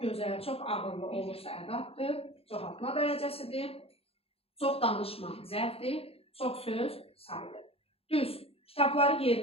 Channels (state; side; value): late; right; 0.28 ms